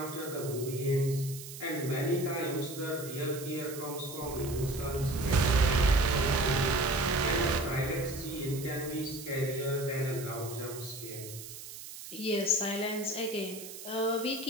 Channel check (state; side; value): noise; right; hiss, 12 dB below the sound